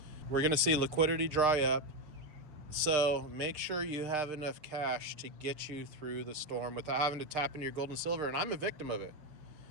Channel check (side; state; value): left; late; 6.6 ms